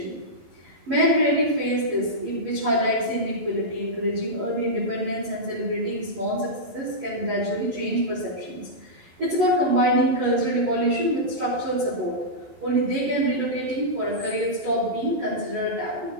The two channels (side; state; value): left; late; 11 ms